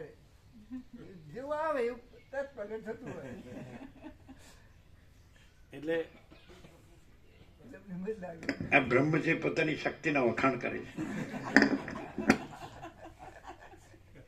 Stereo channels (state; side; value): identical; both; correlation 1.00